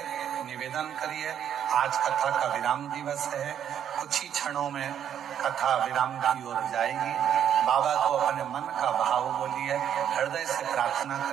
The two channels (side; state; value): left; quieter; 9.4 dB